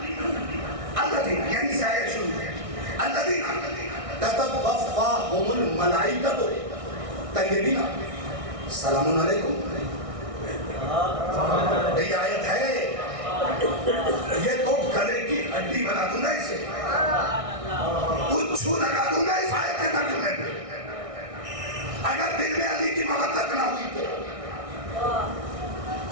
अल्लज़ीना यानी से आयत शुरू है, अल्लज़ीना ततवफ़्फ़ाहुमुल मलाइकतु तय्यबीना सलामुन अलैकुम ये आयत है, ये तो गले की हड्डी बना दूंगा इसे, उच्छू लगा दूंगा इस आयत के तर्जुमे पे, अगर दिल में अली की मोहब्बत ना हुई तो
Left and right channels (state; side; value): late; left; 1.6 ms